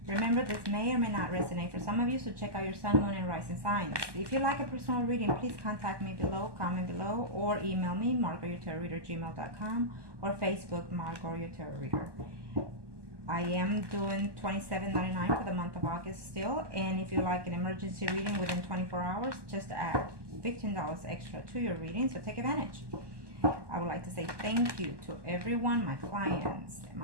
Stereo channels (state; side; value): late; left; 1.2 ms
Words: remember this may or may not resonate for some of you, so check out your sun, moon, and rising signs. If you'd like a personal reading, please contact me below, comment below, or email me, margotyourtarotreader@gmail.com, or Facebook, Margot, your tarot reader. I am doing $27.99 for the month of August still, and if you like an emergency reading within 24 hours, just add $15 extra to your reading, so take advantage. I would like to say thank you to everyone, my clients,